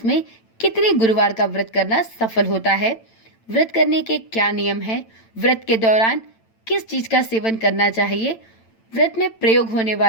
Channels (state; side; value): late; right; 8.9 ms